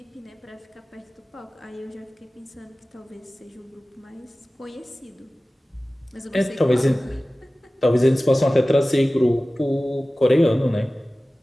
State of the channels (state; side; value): normal; both; correlation 0.97